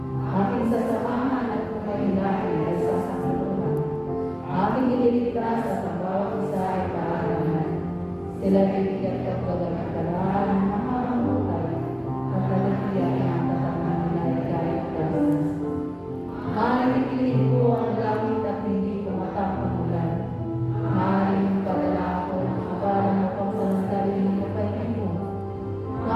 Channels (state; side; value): identical; both; correlation 1.00